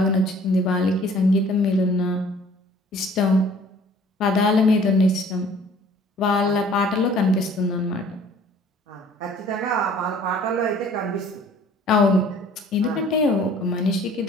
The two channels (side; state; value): both; normal; correlation 0.53